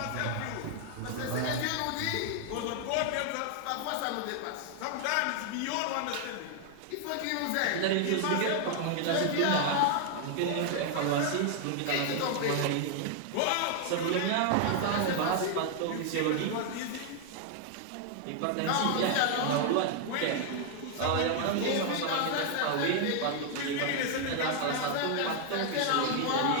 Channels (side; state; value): both; different; correlation 0.00